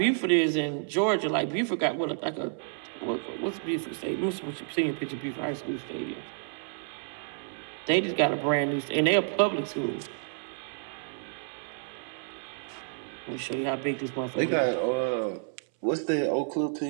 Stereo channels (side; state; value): left; silent; 58 dB below the other